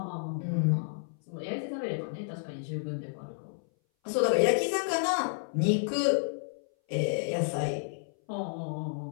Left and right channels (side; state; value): right; silent; 57 dB below the other